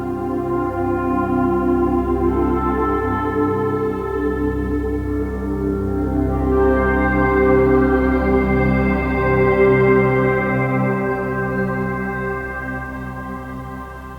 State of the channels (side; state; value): both; identical; correlation 1.00